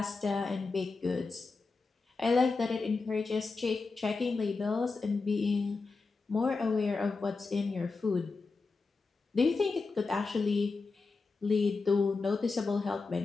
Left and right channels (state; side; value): quieter; right; 4.1 dB